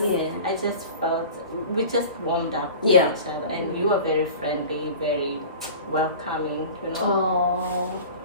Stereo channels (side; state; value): both; inverted; correlation -0.38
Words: I just felt we just warmed up to Yeah. each other, and you were very friendly, very welcoming. You know, Oh,